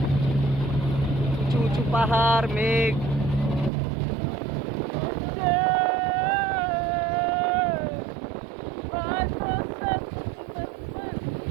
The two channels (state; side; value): drops out; left; at 3.7 s